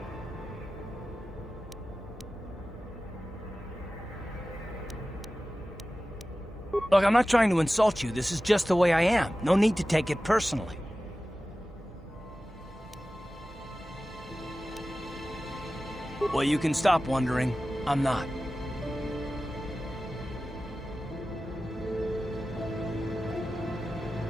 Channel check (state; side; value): normal; both; correlation 0.95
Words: Look, I'm not trying to insult you. This is just the way I am. No need to take it personally. Well, you can stop wondering. I'm not.